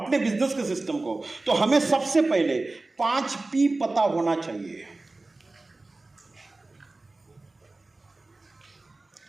बिजनेस के सिस्टम को, तो हमें सबसे पहले 5P पता होना चाहिए,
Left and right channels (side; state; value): left; quieter; 3.2 dB